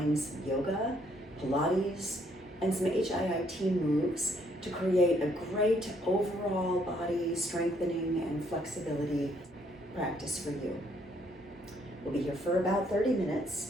some yoga, Pilates, and some HIIT moves to create a great overall body strengthening and flexibility practice for you. We'll be here for about 30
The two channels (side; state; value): both; normal; correlation 0.68